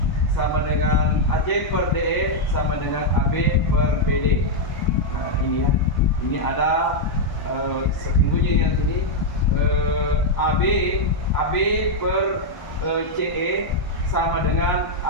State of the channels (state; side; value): late; right; 1.1 ms